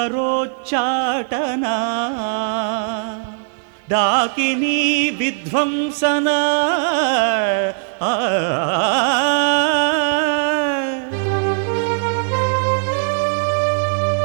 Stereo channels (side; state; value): left; silent; 67 dB below the other